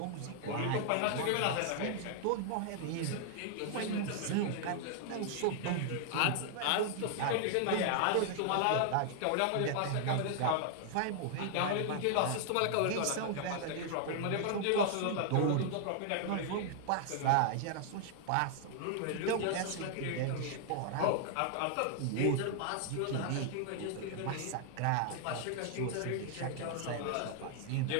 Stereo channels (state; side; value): different; both; correlation 0.00